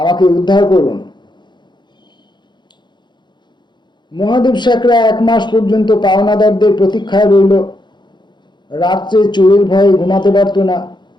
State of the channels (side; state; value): right; late; 0.22 ms